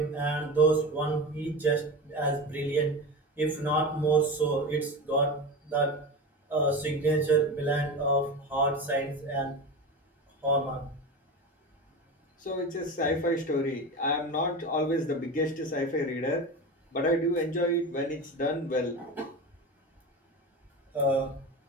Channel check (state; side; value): normal; both; correlation 0.26